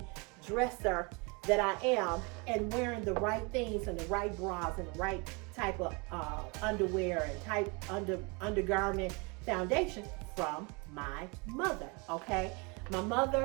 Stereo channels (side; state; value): left; quieter; 29.9 dB